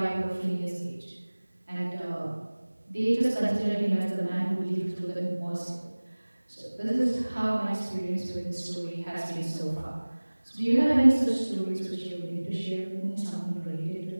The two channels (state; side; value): inverted; both; correlation -1.00